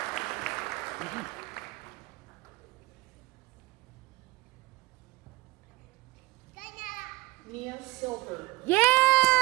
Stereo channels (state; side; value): quieter; left; 21.6 dB